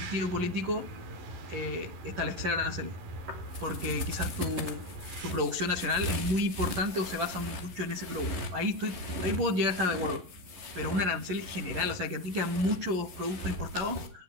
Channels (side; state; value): left; late; 11 ms